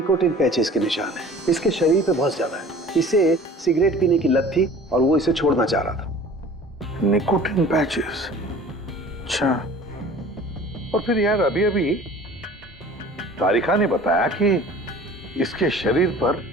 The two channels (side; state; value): both; normal; correlation 0.45